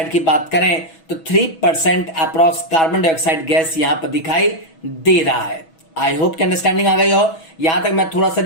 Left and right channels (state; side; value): late; right; 6.2 ms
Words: की बात करें तो 3% अप्रोक्स कार्बन डाइऑक्साइड गैस यहां पर दिखाई दे रहा है। आई होप की अंडरस्टैंडिंग आ गई हो। यहां तक मैं थोड़ा सा